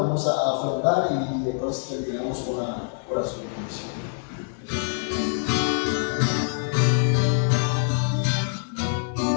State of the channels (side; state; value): right; silent; 58 dB below the other